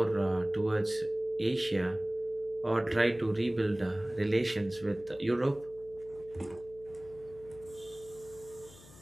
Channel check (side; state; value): left; noise; hum, 21 dB below the sound